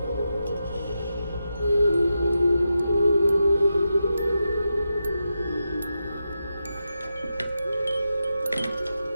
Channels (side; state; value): both; inverted; correlation -0.88